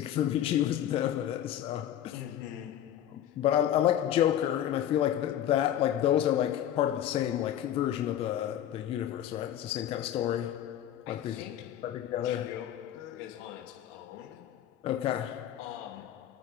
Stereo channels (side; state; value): right; quieter; 11.1 dB